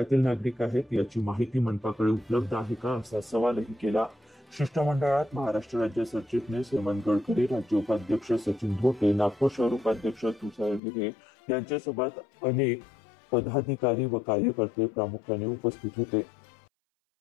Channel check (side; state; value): right; drops out; at 10.8 s